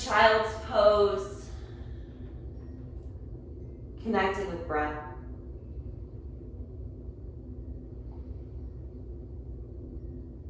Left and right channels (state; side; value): identical; both; correlation 1.00